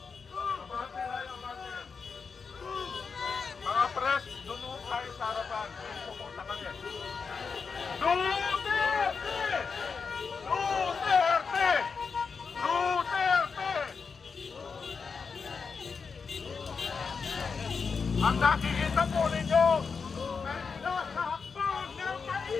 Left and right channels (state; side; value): quieter; right; 5.3 dB